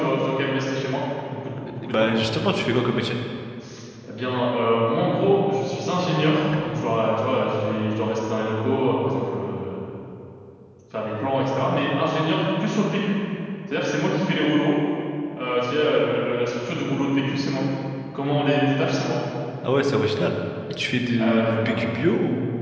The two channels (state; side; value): identical; both; correlation 1.00